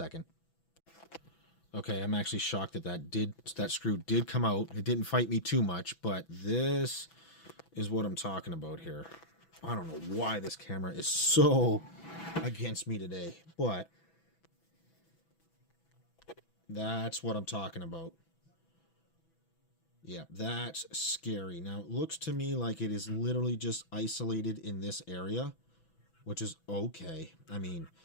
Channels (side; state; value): right; late; 6.0 ms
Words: Okay, I'm actually shocked that that screw did come out. It didn't fight me too much, but this is what I'm talking about here. I don't know why this camera is so against me today, but that's what I'm talking about. Yeah, that's scary. Now, it looks to me like it is literally just isolated in this area, which is okay. I mean,